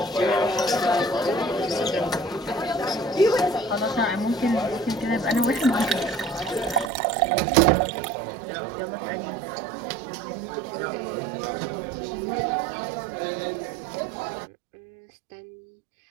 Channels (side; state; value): left; drops out; at 6.9 s